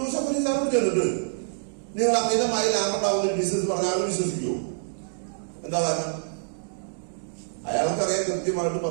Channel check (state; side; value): silent; left; digital silence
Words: അലി സാറോട് ചെന്നിട്ട് നിങ്ങൾ അമിതമായി ലാഭം ഉണ്ടാവുന്ന ബിസിനസ് പറഞ്ഞാൽ വിശ്വസിക്കുമോ? എന്താ കാരണം? അയാൾക്കറിയാം കൃത്യമായിട്ട്